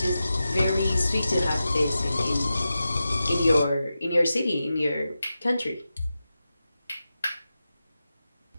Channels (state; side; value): inverted; both; correlation -0.92